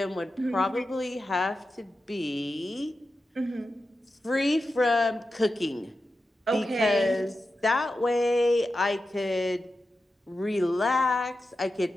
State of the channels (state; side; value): normal; both; correlation 0.91